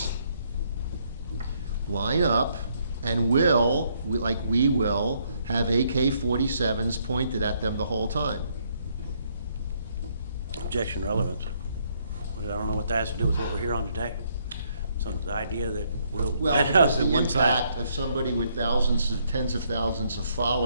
line up and we will have AK-47s pointed at them the whole time. Objection relevance. But I don't know what that has to do with what we're here on today. So the idea that we'll Well, line because up the at one time. impact of somebody with tens of thousands of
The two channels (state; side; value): inverted; both; correlation -0.71